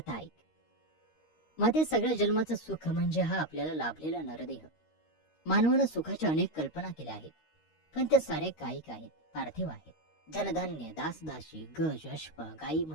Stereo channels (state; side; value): late; right; 13 ms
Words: ऐक. माते, सगळ्या जन्माचं सुख म्हणजे हा आपल्याला लाभलेला नरदेह. मानवानं सुखाच्या अनेक कल्पना केल्या आहेत, पण त्या साऱ्या कायिक आहेत, पार्थिव आहेत. धनधान्य, दासदासी, गज, अश्व, गाई